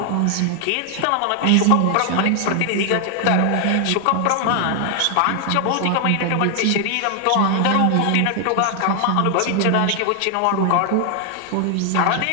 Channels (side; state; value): both; different; correlation 0.00